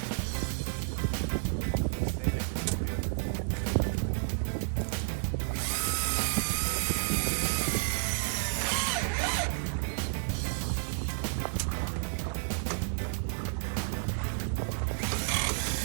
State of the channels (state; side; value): silent; left; digital silence